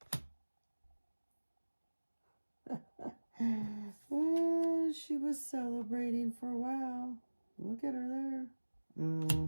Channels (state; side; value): inverted; both; correlation -1.00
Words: Oh, she was celebrating for a while. Look at her there.